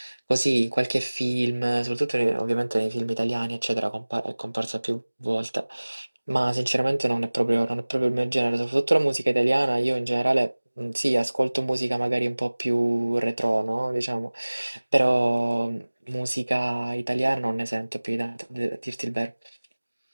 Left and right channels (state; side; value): inverted; both; correlation -1.00